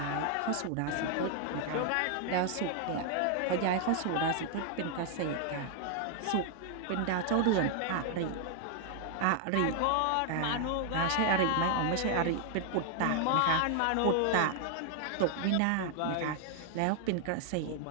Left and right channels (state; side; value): different; both; correlation 0.00